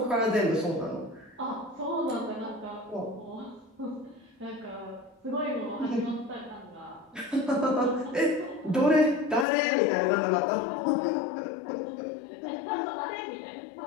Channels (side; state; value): right; drops out; at 9.5 s